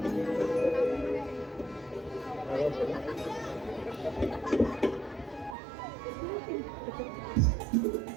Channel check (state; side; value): drops out; left; at 5.6 s